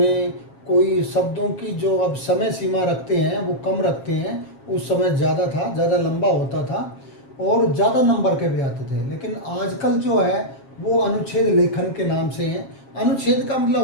कोई शब्दों की जो अब समय सीमा रखते हैं वो कम रखते हैं, उस समय ज़्यादा था, ज़्यादा लंबा होता था और ज़्यादा नंबर के भी आते थे। लेकिन आजकल जो है वो अनुच्छेद लेखन के नाम से है। अनुच्छेद का मतलब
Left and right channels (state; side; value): late; right; 7.4 ms